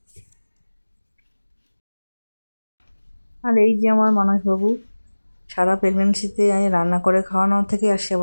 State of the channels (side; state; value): both; inverted; correlation -1.00